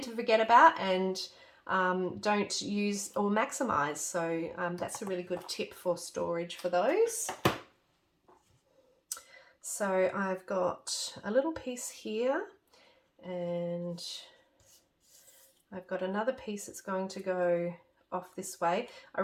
to forget about and don't use or maximize. So that's a really good tip for storage for those. So I've got a little piece here, and I've got another piece that's going to go off this way. I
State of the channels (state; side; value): identical; both; correlation 1.00